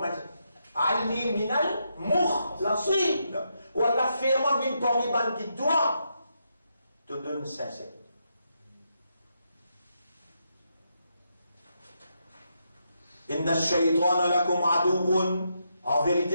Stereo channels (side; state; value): both; inverted; correlation -0.81